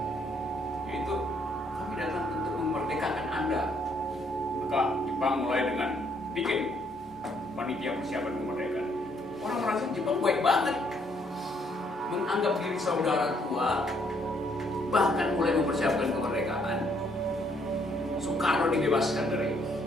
yaitu kami datang untuk memerdekakan Anda. Maka Jepang mulai dengan bikin panitia persiapan kemerdekaan. Orang merasa Jepang baik banget, menganggap diri saudara tua, bahkan mulai mempersiapkan kemerdekaan. Soekarno dibebaskan dari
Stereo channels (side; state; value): both; normal; correlation 0.69